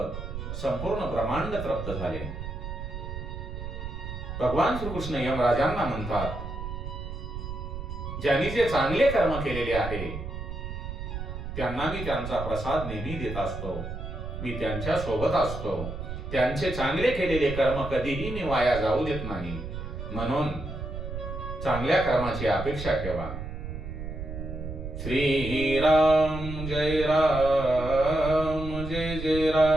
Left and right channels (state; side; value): noise; right; rumble, 7 dB below the sound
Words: संपूर्ण ब्रह्मांड तृप्त झाले. भगवान श्रीकृष्ण यमराजांना म्हणतात, ज्यांनी जे चांगले कर्म केलेले आहे त्यांना मी त्यांचा प्रसाद नेहमी देत असतो. मी त्यांच्या सोबत असतो. त्यांचे चांगले केलेले कर्म कधीही मी वाया जाऊ देत नाही. म्हणून चांगल्या कर्माची अपेक्षा ठेवा. श्री राम जय राम जय जय